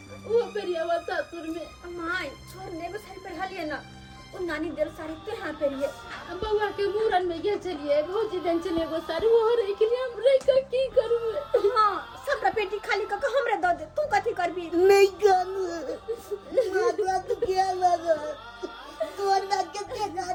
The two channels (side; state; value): both; identical; correlation 1.00